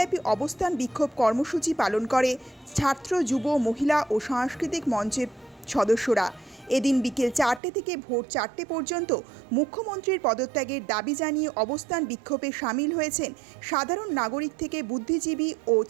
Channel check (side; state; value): left; drops out; at 7.6 s